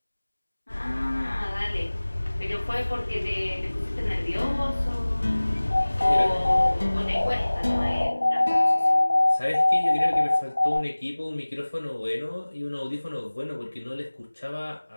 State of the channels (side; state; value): both; inverted; correlation -1.00